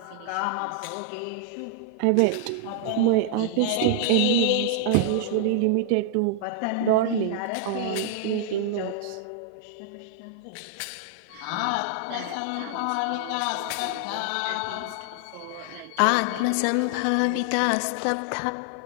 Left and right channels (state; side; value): different; both; correlation 0.00